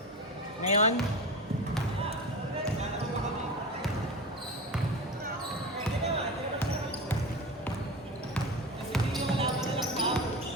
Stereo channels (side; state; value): both; normal; correlation 0.27